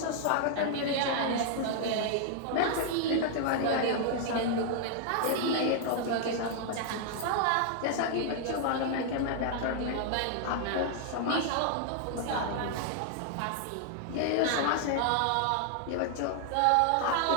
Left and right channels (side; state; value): both; different; correlation -0.01